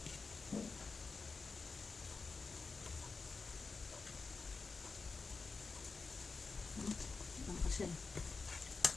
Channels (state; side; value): quieter; right; 4.3 dB